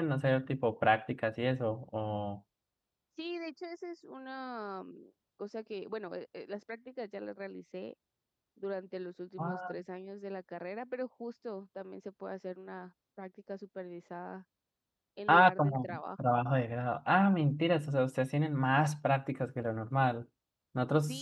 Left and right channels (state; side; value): identical; both; correlation 1.00